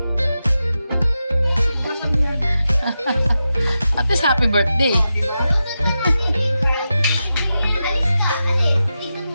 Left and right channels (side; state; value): both; inverted; correlation -0.90